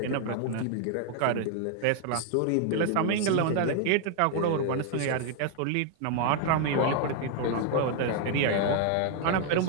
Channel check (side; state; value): both; different; correlation 0.00